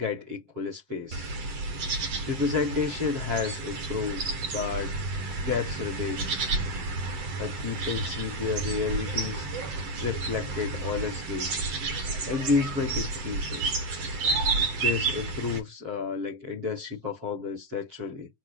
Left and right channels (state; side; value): late; left; 7.9 ms